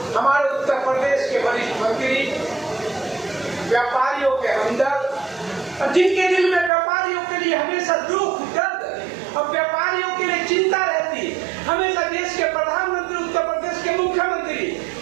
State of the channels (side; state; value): left; drops out; at 6.7 s